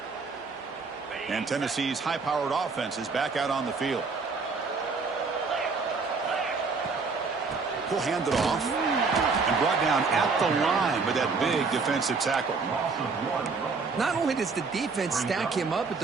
And Tennessee's high-powered offense is back out on the field. He'll hand it off and brought down at the line with that big defensive tackle. Not only does the defense stack him up at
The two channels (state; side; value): quieter; left; 4.5 dB